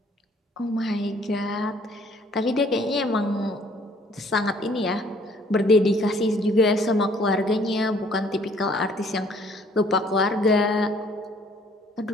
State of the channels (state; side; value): normal; both; correlation 0.59